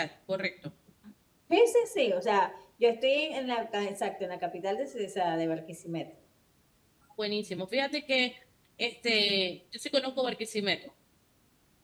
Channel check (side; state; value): both; identical; correlation 1.00